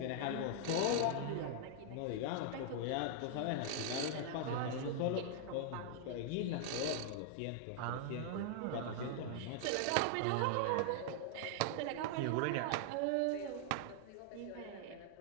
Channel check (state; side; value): different; both; correlation -0.01